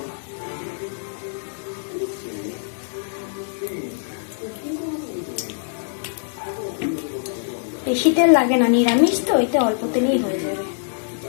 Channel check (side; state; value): right; silent; digital silence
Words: বেশি তেল লাগে না, নিরামিষ তো, এতে অল্প তেলেই হয়ে যাবে।